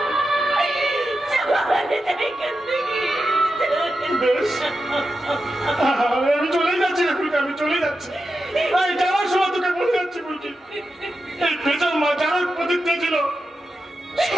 চলে যা এখান থেকে। বেশ, আমি চলে যাচ্ছি রে ফুলকি, আমি চলে যাচ্ছি। এই যাওয়ার সময় তোকে বলে যাচ্ছি ফুলকি, এই বেজাল মা যার প্রতিজ্ঞা ছিল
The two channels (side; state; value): both; normal; correlation 0.90